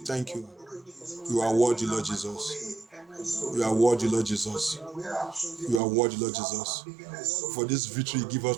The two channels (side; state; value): left; drops out; at 5.8 s